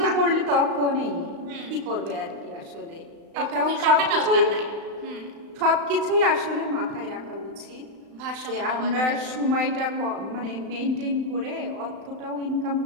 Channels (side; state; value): left; late; 35 ms